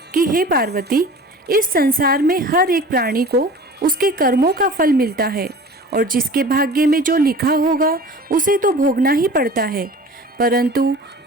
कि हे पार्वती, इस संसार में हर एक प्राणी को उसके कर्मों का फल मिलता है और जिसके भाग्य में जो लिखा होगा उसे तो भोगना ही पड़ता है। परंतु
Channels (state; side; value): normal; both; correlation 0.41